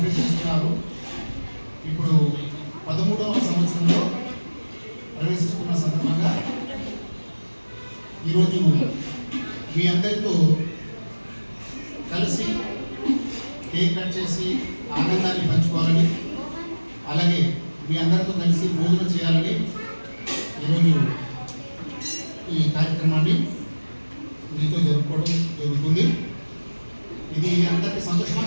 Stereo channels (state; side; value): inverted; both; correlation -1.00